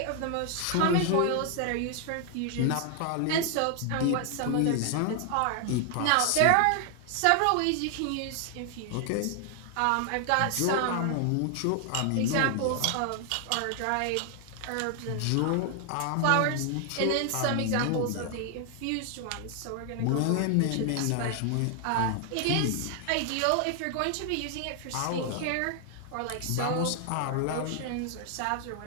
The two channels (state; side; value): different; both; correlation 0.00